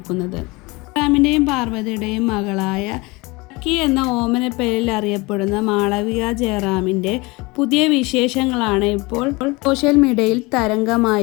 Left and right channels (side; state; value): right; quieter; 24.6 dB